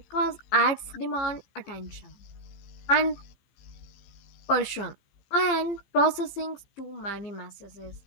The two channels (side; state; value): right; late; 15 ms